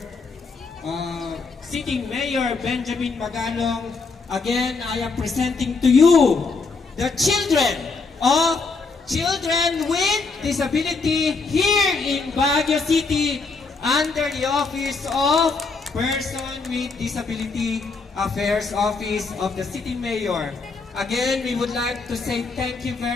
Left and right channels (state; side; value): quieter; right; 4.2 dB